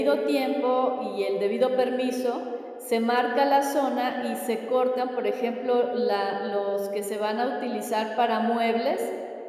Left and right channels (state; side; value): identical; both; correlation 1.00